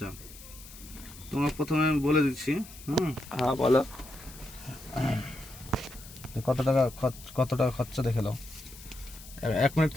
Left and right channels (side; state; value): left; noise; hiss, 17 dB below the sound